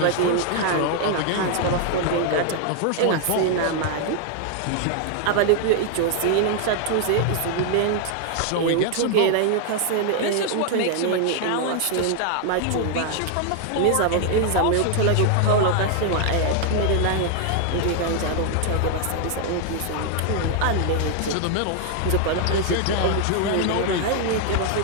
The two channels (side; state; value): both; different; correlation 0.00